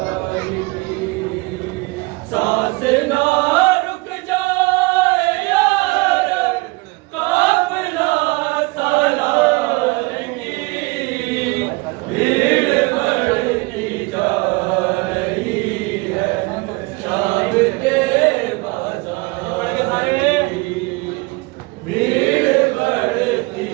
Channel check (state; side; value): quieter; left; 25.1 dB